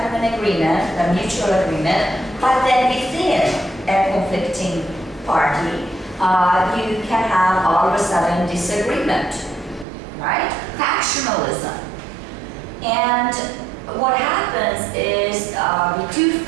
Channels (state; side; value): drops out; left; at 9.9 s